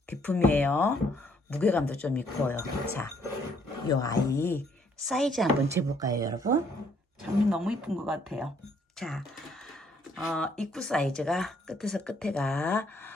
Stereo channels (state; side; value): normal; both; correlation 0.67